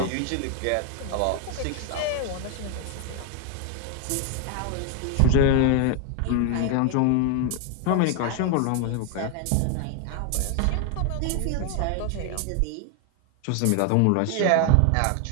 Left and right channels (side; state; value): both; different; correlation 0.01